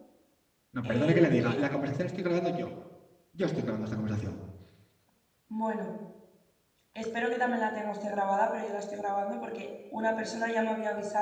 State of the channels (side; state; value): both; identical; correlation 1.00